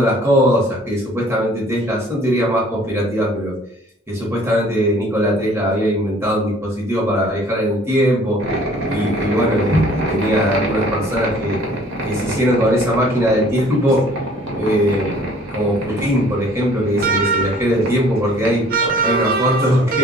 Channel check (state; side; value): normal; both; correlation 0.54